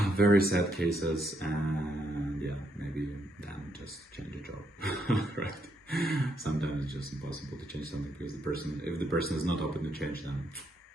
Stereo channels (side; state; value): both; normal; correlation 0.76